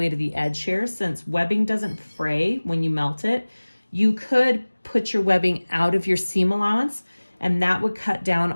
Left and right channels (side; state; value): both; inverted; correlation -1.00